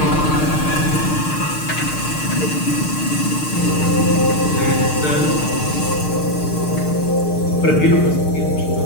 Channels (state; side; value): late; right; 6.6 ms